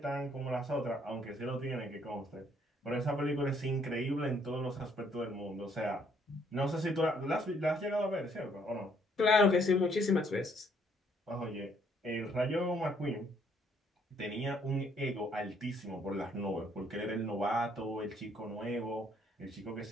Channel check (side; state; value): both; normal; correlation 0.67